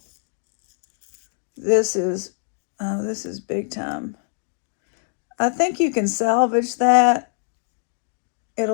This is big time. I think you can salvage that.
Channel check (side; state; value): right; silent; digital silence